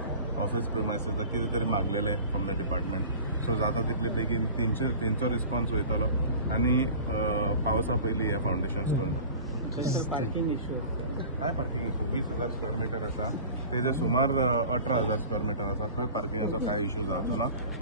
office premises कितें तरी मागलेले from the department. So जाता तितले बेगीन तेंचो response वयतलो आनी पावसा पयलीं हे फावंडेशन स्टोन जाता. पार्किंग इश्यू काय पार्किंग इश्यू 20,000 स्क्वेअर मीटर आसा, तेजे सुमार 18,000 स्क्वेअर मीटर आसा. खंय पार्किंगाचो काय इश्यू जावचो ना.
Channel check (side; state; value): both; inverted; correlation -0.40